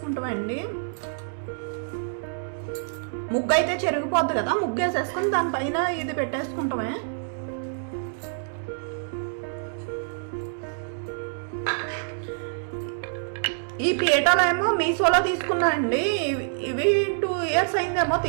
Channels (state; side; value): silent; left; digital silence